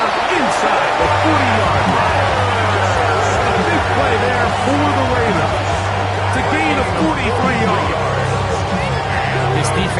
inside the 40-yard line. A big play there for the Ravens to gain a 43-yard. This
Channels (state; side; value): identical; both; correlation 1.00